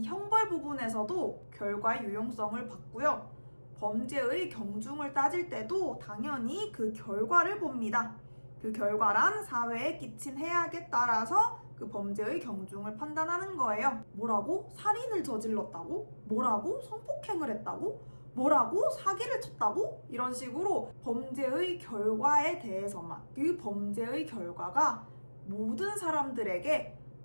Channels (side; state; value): both; inverted; correlation -1.00